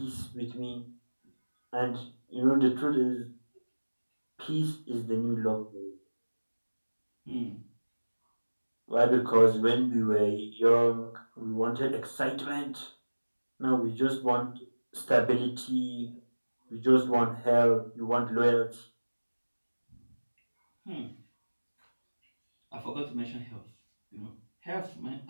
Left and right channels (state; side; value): inverted; both; correlation -1.00